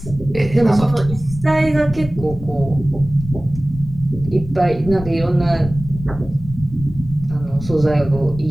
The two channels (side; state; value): left; noise; rumble, 12 dB below the sound